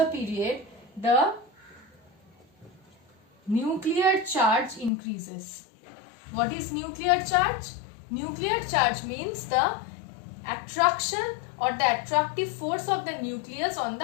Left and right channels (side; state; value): right; drops out; at 4.9 s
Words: period, the nuclear charge increases. What is nuclear charge? Nuclear charge means the attraction or the attractive force of the nucleus on